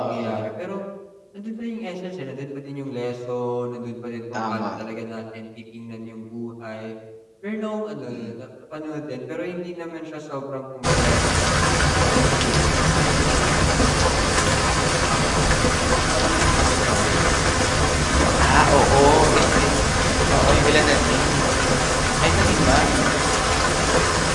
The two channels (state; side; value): identical; both; correlation 1.00